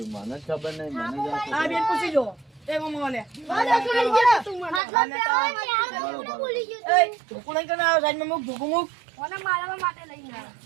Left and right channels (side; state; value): left; drops out; at 4.8 s